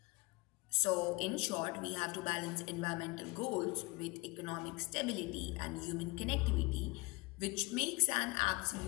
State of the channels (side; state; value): right; quieter; 25.1 dB